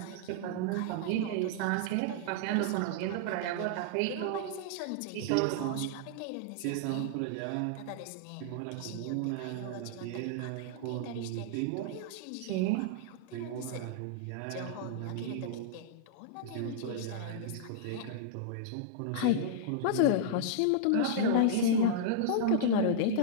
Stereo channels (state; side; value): different; both; correlation -0.01